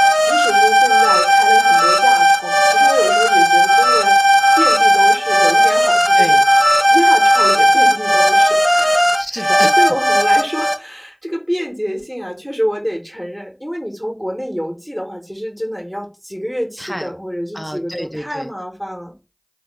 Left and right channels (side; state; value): both; identical; correlation 1.00